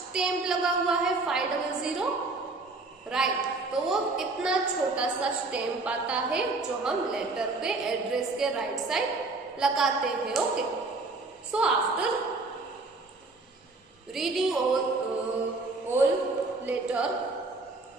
लगा हुआ है 500, राइट। तो वो इतना छोटा सा स्टैम्प आता है जो हम लेटर पे एड्रेस के राइट साइड लगाते हैं, okay. So after reading all letter,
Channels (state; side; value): quieter; left; 3.5 dB